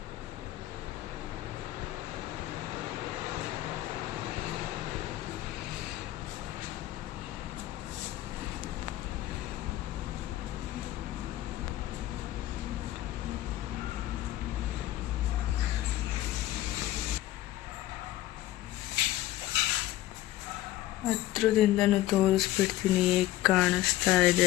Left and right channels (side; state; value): right; quieter; 15.2 dB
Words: ಹತ್ರದಿಂದನೂ ತೋರಿಸ್ಬಿಡ್ತೀನಿ ಹೇಗೆ ಕಾಣಿಸ್ತಾ